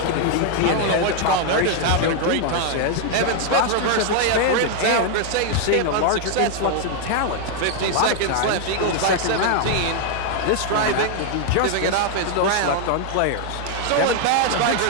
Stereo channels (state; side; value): different; both; correlation 0.00